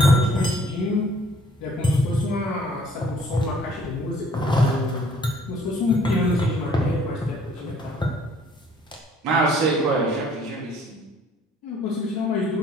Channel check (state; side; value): normal; both; correlation 0.58